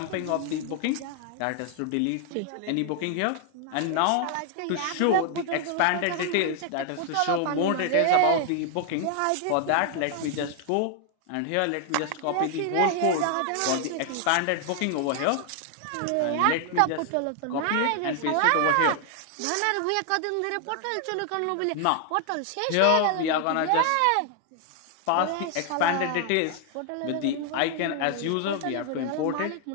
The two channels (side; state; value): both; different; correlation 0.00